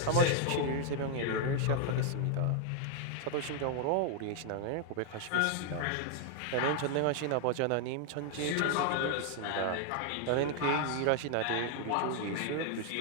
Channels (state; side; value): different; both; correlation 0.00